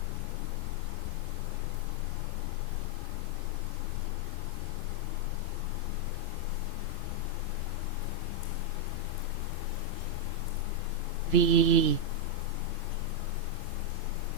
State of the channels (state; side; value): late; left; 2.9 ms